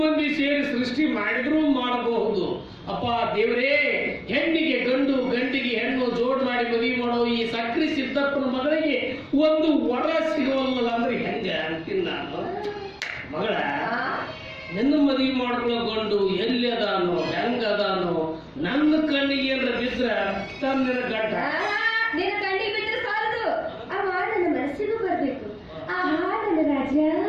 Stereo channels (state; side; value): identical; both; correlation 1.00